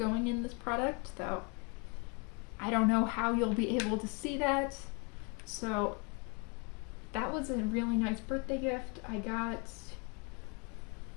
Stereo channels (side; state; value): right; quieter; 33.4 dB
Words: in this product, though I don't know how you'll be able to see that. So that was a really nice birthday gift. I got